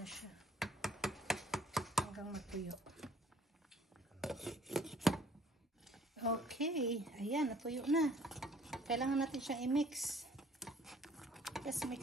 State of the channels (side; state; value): both; normal; correlation 0.58